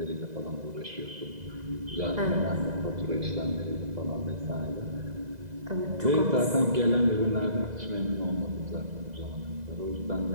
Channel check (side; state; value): left; late; 2.0 ms